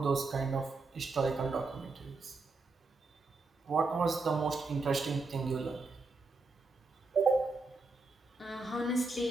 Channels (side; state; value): left; quieter; 3.7 dB